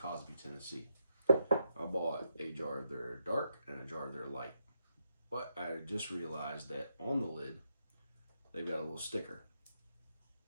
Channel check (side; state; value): both; inverted; correlation -0.82